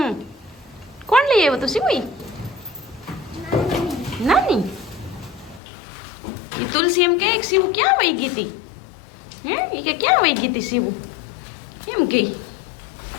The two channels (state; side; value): drops out; right; at 5.6 s